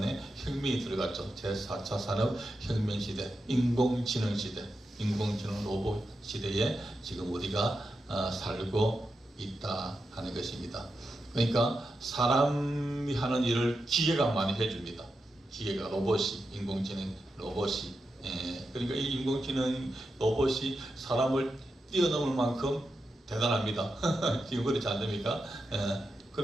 혁명이 들어갔죠. 제4차 산업혁명시대. 인공지능시대. 인공지능 로봇 시대에 지금 우리가 살고 있다 하는 것입니다. 그러니까 사람이 하는 일을 기계가 많이 해줍니다. 기계가 로봇이, 인공지능 로봇이. 그러니까 이 인공지능 로봇이 사람을 뛰어넘을 만큼 대단합니다. 지금 그렇지 않습니까?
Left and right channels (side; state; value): both; normal; correlation 0.88